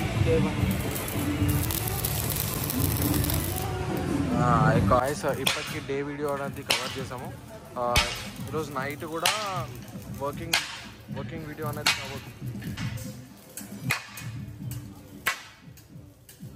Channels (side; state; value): both; identical; correlation 1.00